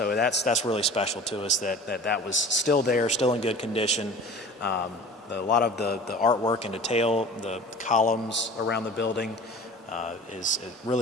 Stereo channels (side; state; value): both; normal; correlation 0.42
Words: that's really special to us that was still there, still in good condition. A lot of the artwork and detail, the columns around the building, it